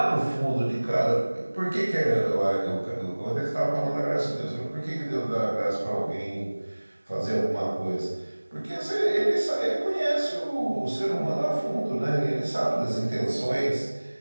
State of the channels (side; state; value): both; inverted; correlation -1.00